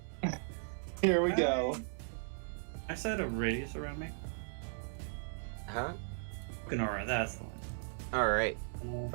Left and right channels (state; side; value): silent; left; digital silence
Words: Here we go. I said a radius around me. Huh? Ganora, that's the one. All right.